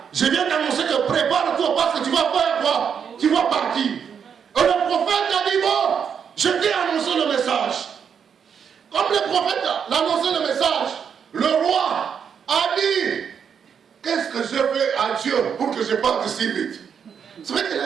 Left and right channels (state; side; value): quieter; left; 7.3 dB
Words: Je viens t'annoncer que prépare-toi parce que tu vas faire quoi? Tu vas partir. Et le prophète a dit, bon, je t'ai annoncé le message. Comme le prophète a annoncé le message, le roi a dit, qu'est-ce que je fais à Dieu pour que je parte si vite? C'est vrai que